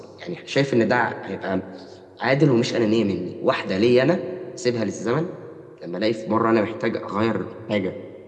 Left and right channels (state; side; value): identical; both; correlation 1.00